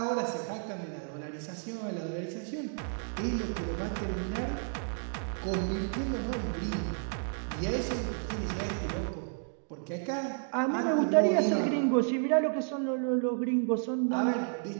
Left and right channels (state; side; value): silent; left; 57 dB below the other